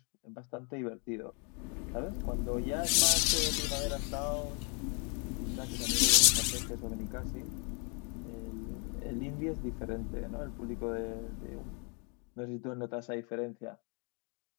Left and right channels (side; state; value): right; quieter; 36.3 dB